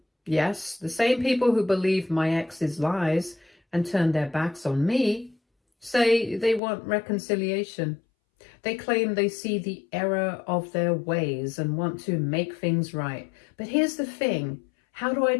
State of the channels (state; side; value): drops out; right; at 6.6 s